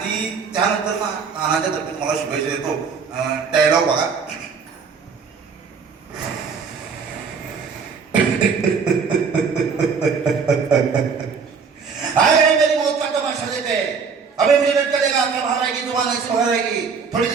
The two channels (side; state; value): left; quieter; 5.7 dB